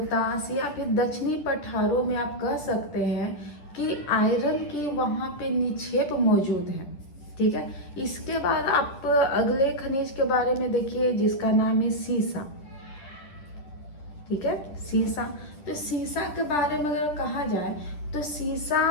या फिर दक्षिणी पठारों में आप कह सकते हैं कि आयरन की वहाँ पे निक्षेप मौजूद है, ठीक है। इसके बाद आप अगले खनिज के बारे में देखिए जिसका नाम है सीसा, ठीक है, सीसा। तो सीसा के बारे में अगर कहा जाए तो सीसा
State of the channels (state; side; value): late; right; 10 ms